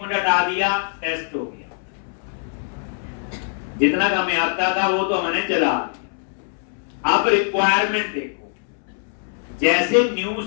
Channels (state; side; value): silent; right; 64 dB below the other